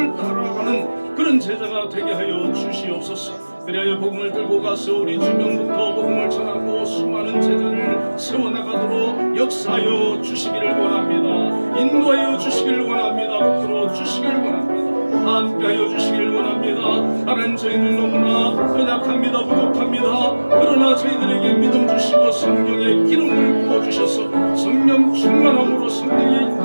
따라가는 그런 제자가 되게 하여 주시옵소서. 그리하여 복음을 들고 가서 우리 주변부터 복음을 전하고 수많은 제자를 세워나가도록 역사하여 주시기를 원합니다. 인도하여 주시기를 원합니다. 붙들어 주시기를 원합니다. 함께하여 주시기를 원합니다. 하나님, 저희는 너무나 연약합니다. 부족합니다. 그러나 저희들에게 믿음 주시고 성령의 기름을 부어주셔서 성령 충만함으로 성령의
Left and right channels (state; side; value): inverted; both; correlation -1.00